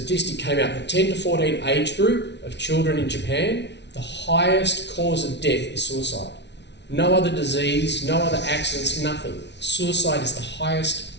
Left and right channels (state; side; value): late; right; 0.50 ms